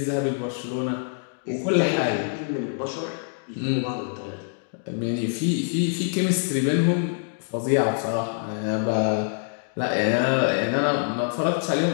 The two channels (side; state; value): right; silent; digital silence